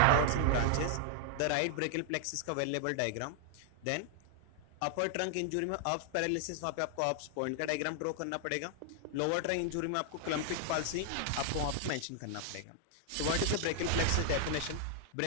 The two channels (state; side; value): different; both; correlation 0.00